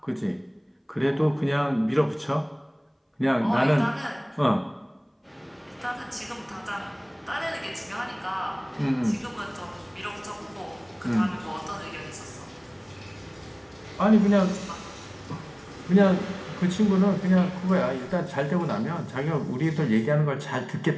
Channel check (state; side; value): identical; both; correlation 1.00